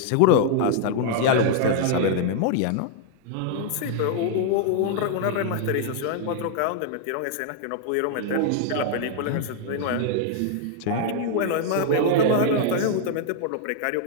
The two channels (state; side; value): different; both; correlation 0.00